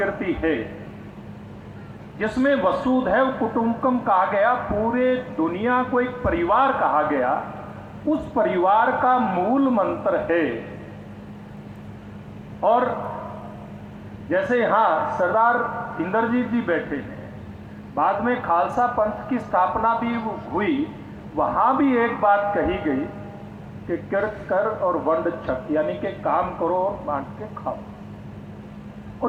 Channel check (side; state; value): both; identical; correlation 1.00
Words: है जिसमें वसुधैव कुटुंबकम कहा गया, पूरे दुनिया को एक परिवार कहा गया, उस परिवार का मूल मंत्र है। और जैसे यहाँ सरदार इंद्रजीत जी बैठे हैं, बाद में खालसा पंथ की स्थापना भी हुई, वहाँ भी एक बात कही गई कि किरत कर और वंड छक, यानी कि काम करो और बांट के खाओ।